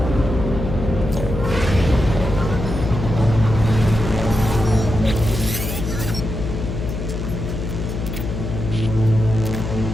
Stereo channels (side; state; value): left; noise; hum, 5 dB below the sound